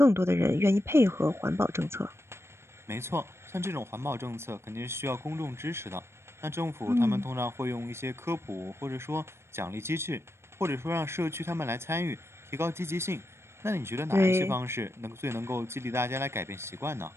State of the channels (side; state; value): left; late; 0.12 ms